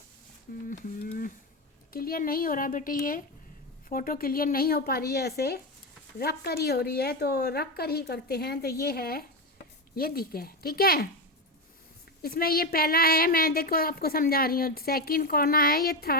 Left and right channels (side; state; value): both; normal; correlation 0.13